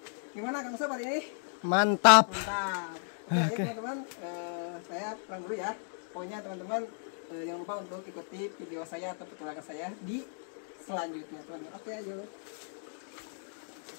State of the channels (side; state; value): right; silent; digital silence